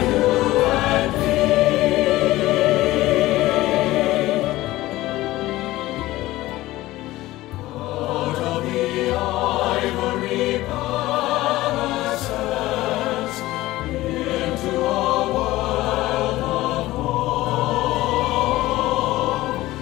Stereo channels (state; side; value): quieter; right; 17.3 dB